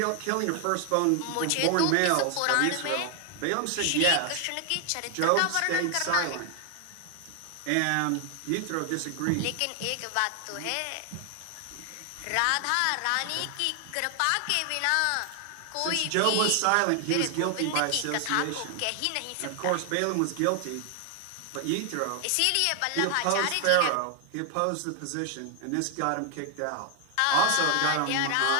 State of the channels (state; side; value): different; both; correlation 0.00